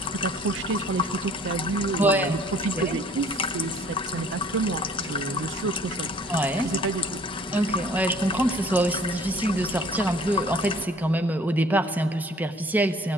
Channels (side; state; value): both; normal; correlation 0.54